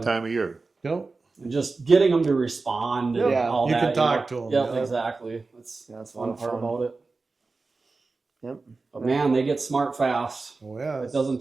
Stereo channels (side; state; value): left; quieter; 3.9 dB